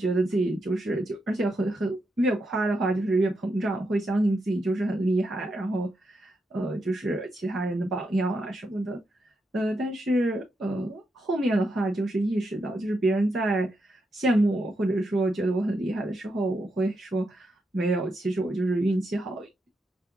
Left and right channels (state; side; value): normal; both; correlation 0.83